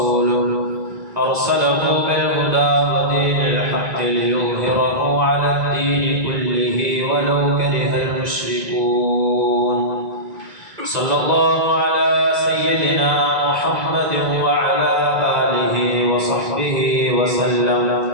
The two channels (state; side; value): late; left; 2.3 ms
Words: أرسله بالهدى ودين الحق ليظهره على الدين كله ولو كره المشركون صلى الله على سيدنا محمد وعلى آله وصحبه وسلم